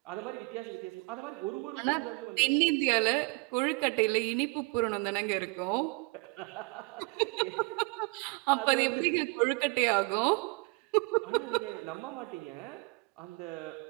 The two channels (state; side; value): quieter; left; 28.6 dB